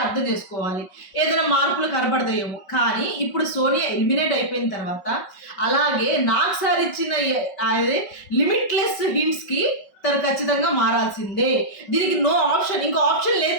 అర్థం చేసుకోవాలి, ఏదైనా మార్పులు కనపడతాయేమో. కానీ ఇప్పుడు సోనియా ఎలిమినేట్ అయిపోయిన తర్వాత అలాగే నాకు సార్ ఇచ్చిన అదే లిమిట్లెస్ హింట్స్కి తను ఖచ్చితంగా మారాల్సిందే. దీనికి నో ఆప్షన్, ఇంకో ఆప్షన్ లేదు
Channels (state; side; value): late; right; 5.3 ms